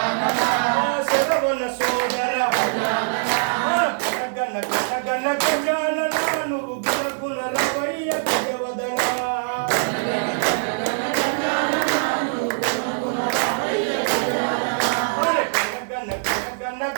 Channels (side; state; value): left; silent; digital silence